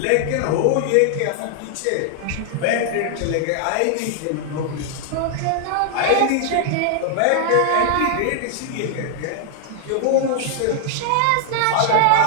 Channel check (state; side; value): different; both; correlation 0.00